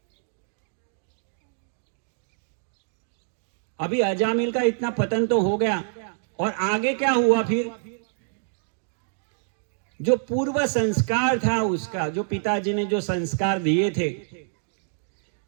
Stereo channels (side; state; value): left; silent; digital silence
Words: अभी अजामिल का इतना पतन तो हो गया, और आगे क्या हुआ फिर? जो पूर्व संस्कार था उसका, जो पिताजी ने जो संस्कार दिए थे,